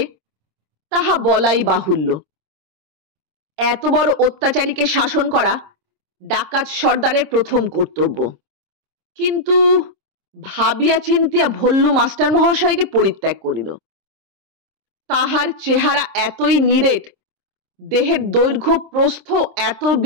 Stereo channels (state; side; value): late; left; 26 ms